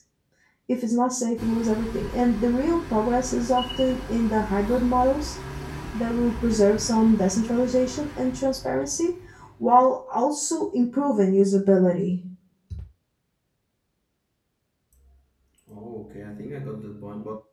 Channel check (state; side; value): identical; both; correlation 1.00